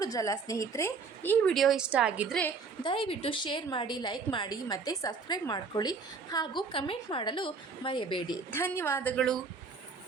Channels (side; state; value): left; quieter; 4.9 dB